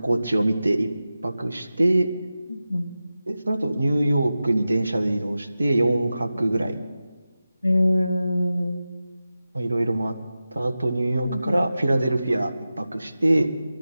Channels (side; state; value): both; inverted; correlation -0.93